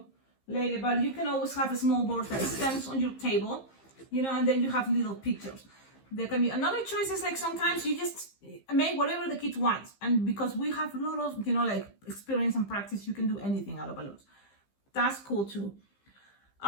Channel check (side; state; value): right; late; 15 ms